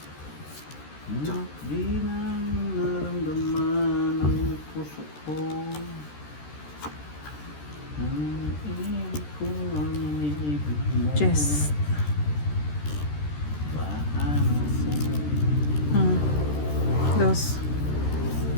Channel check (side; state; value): right; late; 13 ms